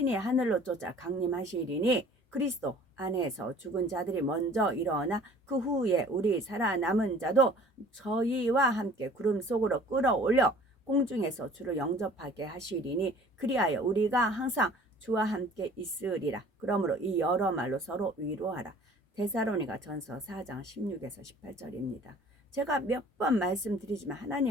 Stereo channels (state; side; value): normal; both; correlation 0.50